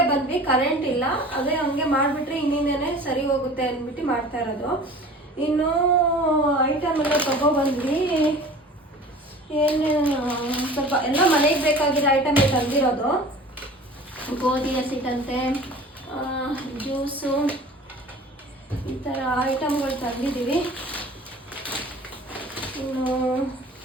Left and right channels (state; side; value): normal; both; correlation 0.42